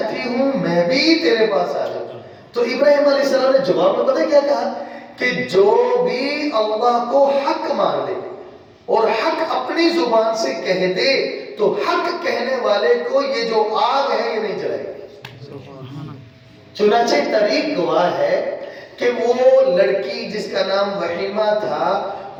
ہوں میں بھی تیرے پاس آ جاؤں. تو ابراہیم علیہ السلام نے جواب میں پتہ کیا کہا کہ جو بھی اللہ کو حق مان لے اور حق اپنی زبان سے کہہ دے تو حق کہنے والے کو یہ جو آگ ہے یہ نہیں جلائے گی. چنانچہ تاریخ گواہ ہے کہ وہ لڑکی جس کا نام وحیمہ تھا،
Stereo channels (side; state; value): both; identical; correlation 1.00